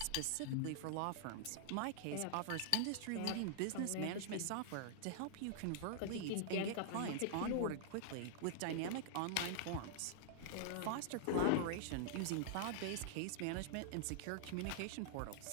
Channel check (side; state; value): both; different; correlation -0.01